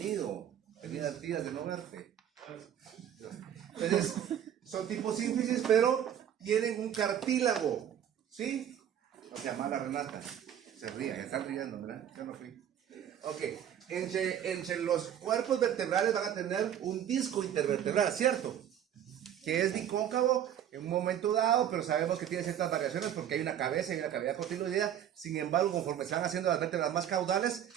Bienvenida, tías, de no verte. Entonces, son tipo sínfisis, pero tienen un cartílago. ¿Sí? O sea, mala Renata. Se ríe, ya están riendo, ¿verdad? Yo no fui. Ok, entre los cuerpos vertebrales van a tener un disco intervertebral, ¿cierto? Que es bicóncavo en un momento dado, pero sabemos que tiene ciertas variaciones porque hay una cabeza y una cavidad cotiloidea. Sin embargo, conforme se van haciendo las vértebras más caudales,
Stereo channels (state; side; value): quieter; left; 10.0 dB